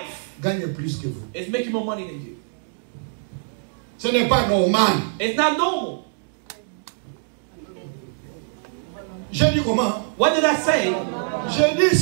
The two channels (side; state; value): left; silent; digital silence